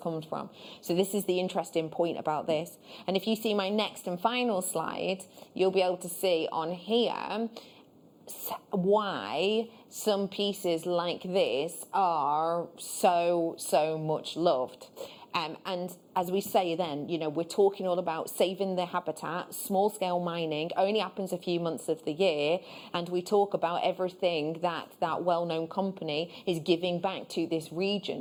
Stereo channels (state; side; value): identical; both; correlation 1.00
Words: from. So this is the interesting point about this. And if you see my next and final slide, you'll be able to see on here why some pieces like this are so much loved. And as we say then, you know, we're talking all about saving the habitat. Small scale mining only happens a few months of the year, and we talk about everything that that well-known company is giving back to this